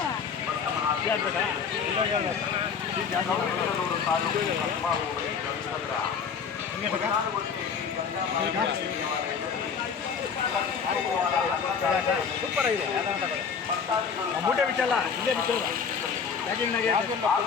ಗೌರಿಬಿದನೂರು ತಾಲೂಕು ಕಸ್ಬಾ ಹೋಬಳಿ ಗಂಗಸಂದ್ರ ಸೂಪರ್ ಆಗಿದೆ ಮೂಟೆ ಬಿಚ್ಚಲ್ಲ ಇಲ್ಲೇ ಬಿಚ್ಚಲ್ಲ ಪ್ಯಾಕಿಂಗ್ನಾಗೆ ಹಾಗೂ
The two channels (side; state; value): right; quieter; 6.3 dB